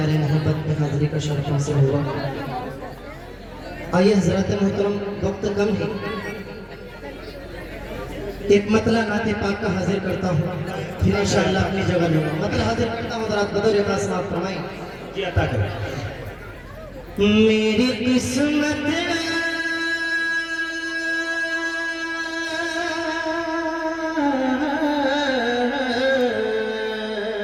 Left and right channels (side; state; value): both; identical; correlation 1.00